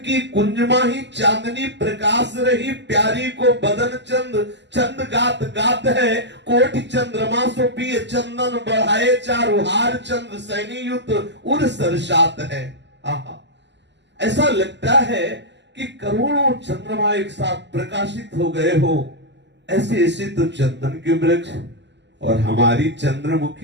कुंजमा ही चांदनी प्रकाश रही। प्यारी को बदन चंद गात गात है। कोटि चंद्रमा सो पिय चंदन बढ़ाए, चारु हार चंद्र सैनी युत उर सरसात है। आहा, ऐसा लगता है कि करोड़ों चंद्रमा एक साथ प्रकाशित हो गए हो। ऐसे ऐसे तो चंदन के वृक्ष। और हमारी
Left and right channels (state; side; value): late; left; 0.51 ms